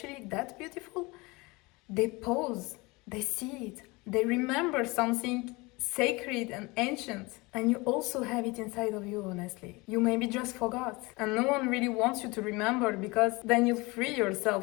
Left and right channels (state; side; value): quieter; right; 24.5 dB